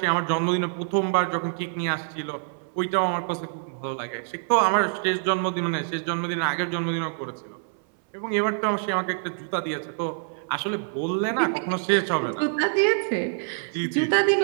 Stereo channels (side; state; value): left; silent; 60 dB below the other